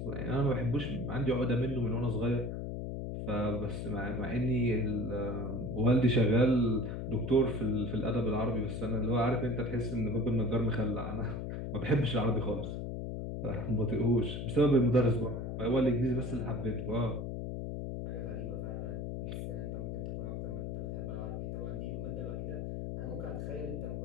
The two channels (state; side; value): noise; left; hum, 4 dB below the sound